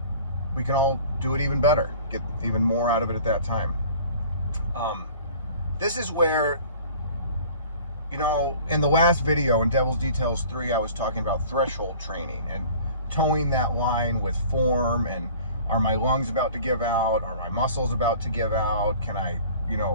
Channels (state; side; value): inverted; both; correlation -0.47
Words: we can all do it even better, get even more out of it at that time. This is where, you know, in the last video in Devil's Details 3, I was talking about threshold training and towing that line with form, and are my lungs about to give out? Are my muscles about to give out? Can I,